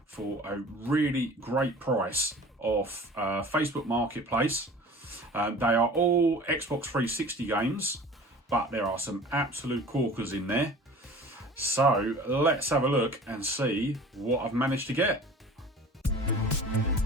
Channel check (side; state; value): both; normal; correlation 0.42